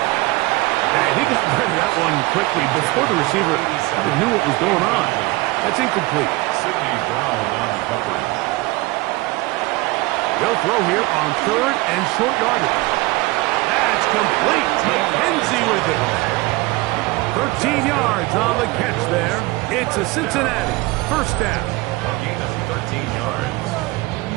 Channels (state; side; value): quieter; left; 21.9 dB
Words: he got rid of that one quickly before the receiver even knew what was going on. That's incomplete. Sidney Brown on the coverage. They'll throw here on third and short yardage. That's complete. McKenzie with it. 13 yards on the catch there. It's a Cincinnati first down. A gain of 13 yards.